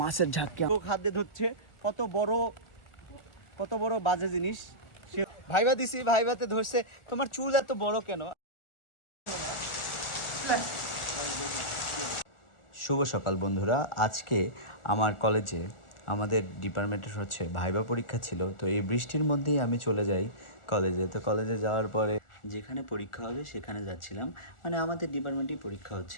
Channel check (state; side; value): late; right; 1.4 ms